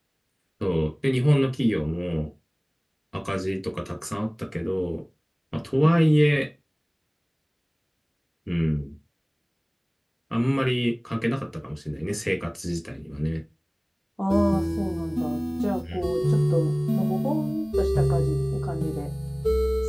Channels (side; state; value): both; identical; correlation 1.00